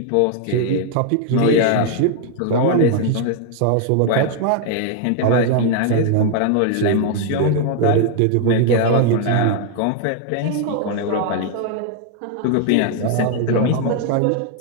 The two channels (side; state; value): both; different; correlation 0.00